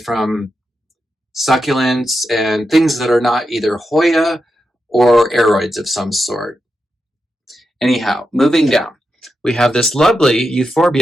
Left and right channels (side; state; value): both; normal; correlation 0.87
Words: succulents and things that are not either Hoya or aroids of some sort. Anyhow, moving down, we have this lovely